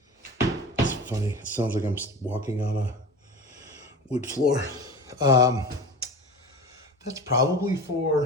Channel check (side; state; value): both; normal; correlation 0.33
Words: It's funny. It sounds like I'm walking on a wood floor. That's probably